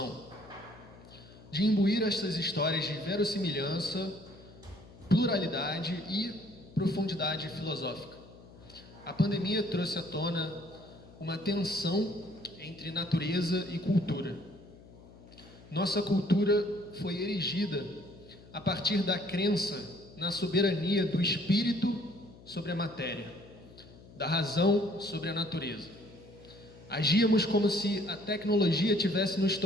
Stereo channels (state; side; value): noise; left; hum, 21 dB below the sound